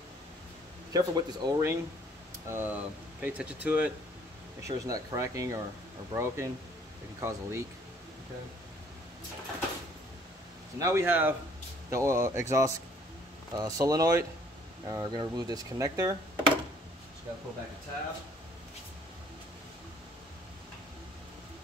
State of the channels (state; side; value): normal; both; correlation 0.60